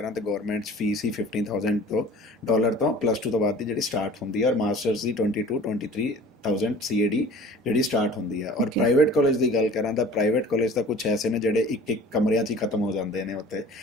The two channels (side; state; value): both; normal; correlation 0.45